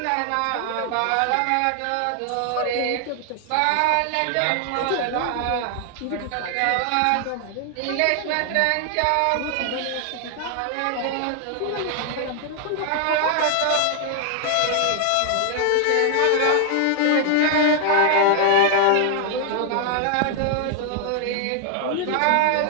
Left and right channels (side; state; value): both; different; correlation 0.00